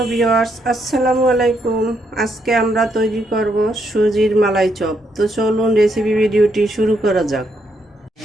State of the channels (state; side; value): normal; both; correlation 0.76